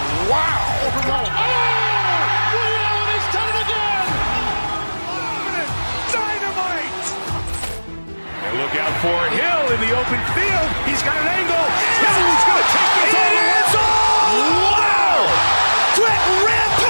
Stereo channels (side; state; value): both; inverted; correlation -1.00